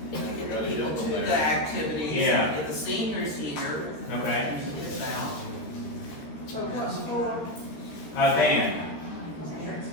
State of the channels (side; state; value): right; late; 13 ms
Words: Get people to the activities, Yeah. and get the seniors here. Okay. Get it out. So what's for, Band.